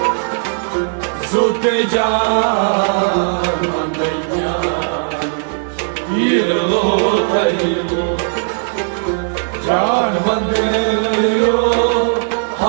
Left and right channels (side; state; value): left; silent; 56 dB below the other